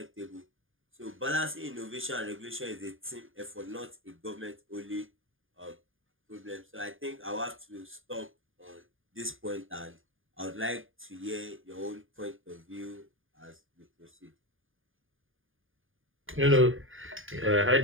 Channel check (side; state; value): left; late; 0.59 ms